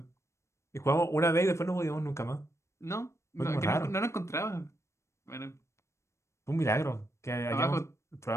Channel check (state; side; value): late; right; 0.13 ms